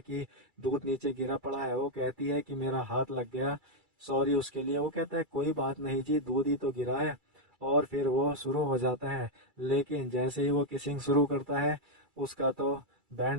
कि दूध नीचे गिरा पड़ा है। वो कहती है कि मेरा हाथ लग गया, सॉरी उसके लिए। वो कहता है कोई बात नहीं जी, दूध ही तो गिरा है। और फिर वो शुरू हो जाता है। लेकिन जैसे ही वो किसिंग शुरू करता है, उसका तो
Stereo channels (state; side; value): late; left; 2.3 ms